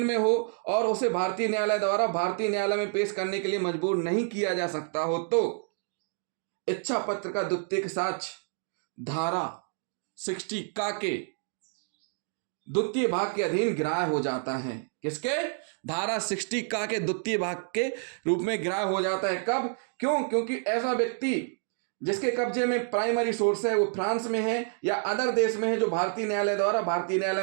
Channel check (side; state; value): left; silent; 59 dB below the other